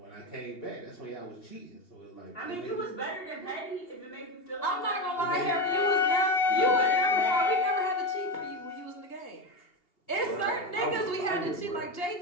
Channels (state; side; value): late; right; 2.8 ms